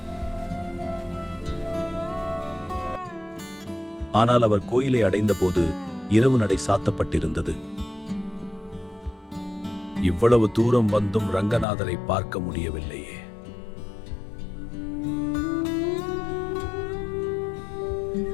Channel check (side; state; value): right; drops out; at 11.7 s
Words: ஆனால் அவர் கோயிலை அடைந்த போது இரவு நடை சாத்தப்பட்டிருந்தது. இவ்வளவு தூரம் வந்தும் ரங்கநாதரை பார்க்க முடியவில்லையே.